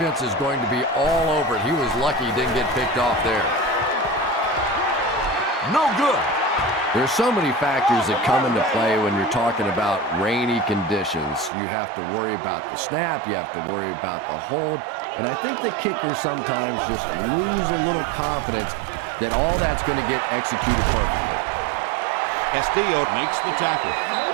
is going to be all over it. He was lucky he didn't get picked off there. No good. There's so many factors that come into play when you're talking about rainy conditions. You have to worry about the snap. You have to worry about the hold. And I think the kickers sometimes just lose a little confidence that all that's going to get executed perfectly. Castillo makes the tackle.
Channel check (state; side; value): drops out; left; at 11.5 s